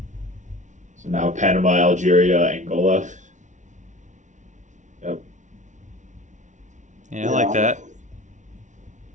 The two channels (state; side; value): late; left; 0.36 ms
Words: So now Panama, Algeria, Angola. Yep. Yeah, I like that.